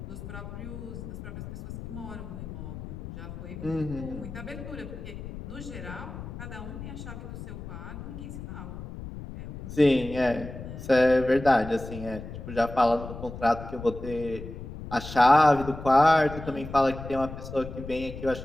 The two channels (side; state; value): left; noise; rumble, 10 dB below the sound